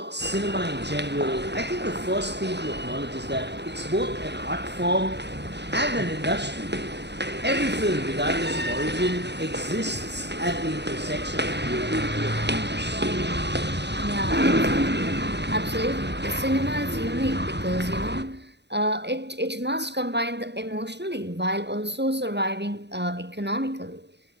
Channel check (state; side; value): late; left; 0.50 ms